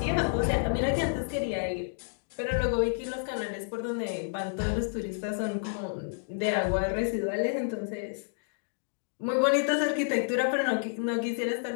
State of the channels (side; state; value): right; silent; digital silence